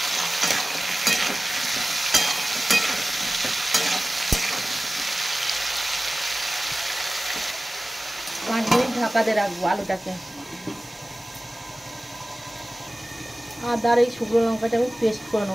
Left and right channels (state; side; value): normal; both; correlation 0.97